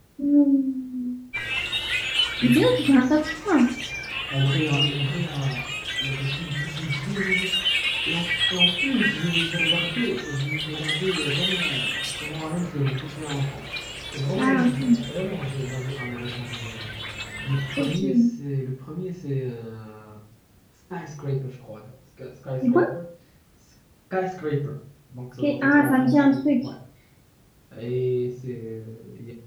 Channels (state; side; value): identical; both; correlation 1.00